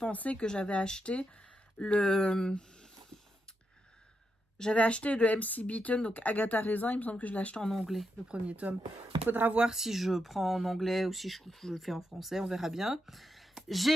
que j'avais acheté le MC Beaton, donc Agatha Raisin. Il me semble que je l'ai acheté en anglais, le premier tome. Il faudra voir si je prends en anglais ou si je le fais en français, on verra bien.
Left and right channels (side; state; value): both; normal; correlation 0.83